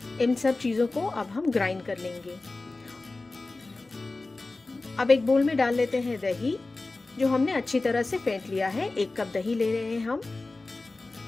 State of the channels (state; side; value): quieter; right; 3.3 dB